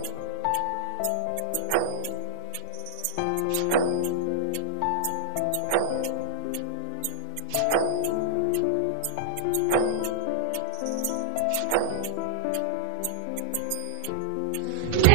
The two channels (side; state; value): both; different; correlation -0.01